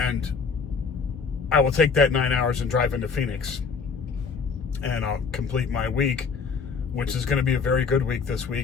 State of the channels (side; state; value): right; quieter; 5.4 dB